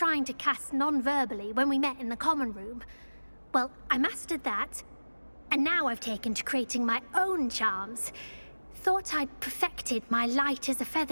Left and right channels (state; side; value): inverted; both; correlation -1.00